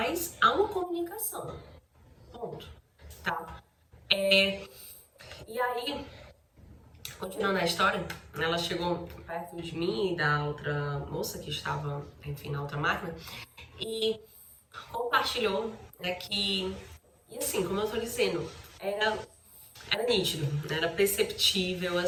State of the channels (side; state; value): both; identical; correlation 1.00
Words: há uma comunicação, ponto, tá? E aí, Continuando a história, ela chegou perto de mim e da outra moça que estava, enfim, na outra máquina e compartilhou, né, que, e assim, como eu tô dizendo, era nítido, né, era perceptível,